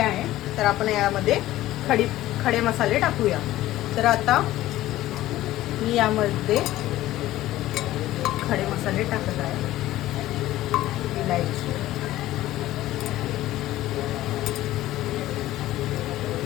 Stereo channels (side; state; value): right; quieter; 15.3 dB